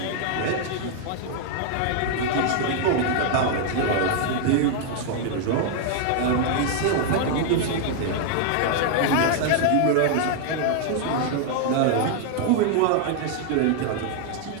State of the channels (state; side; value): different; both; correlation 0.00